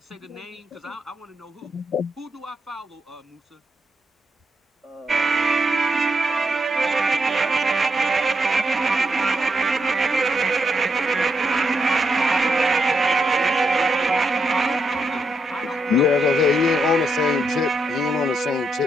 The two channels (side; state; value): both; normal; correlation 0.80